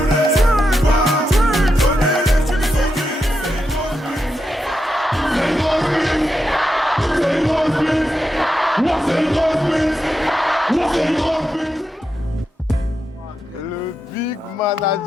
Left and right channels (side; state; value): both; normal; correlation 0.86